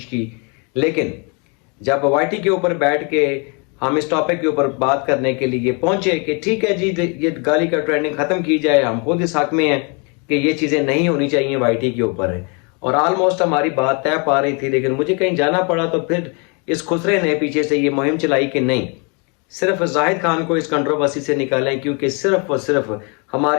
की। लेकिन जब वाईटी के ऊपर बैठ के हम इस टॉपिक के ऊपर बात करने के लिए पहुंचे कि ठीक है जी, ये गाली का ट्रेंडिंग खत्म की जाए, हम खुद इस हक में हैं कि ये चीजें नहीं होनी चाहिए वाईटी के ऊपर है, और ऑलमोस्ट हमारी बात तय पा रही थी। लेकिन मुझे कहीं जाना पड़ा, तो फिर इस खुसरे ने पीछे से ये मुहिम चलाई कि नहीं, सिर्फ जाहिद खान को इस कंट्रोवर्सी से निकालें, क्योंकि सिर्फ और सिर्फ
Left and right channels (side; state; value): right; quieter; 33.8 dB